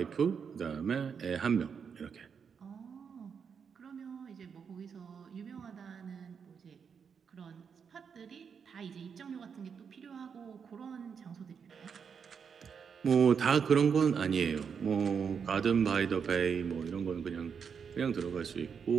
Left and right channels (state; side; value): quieter; left; 6.6 dB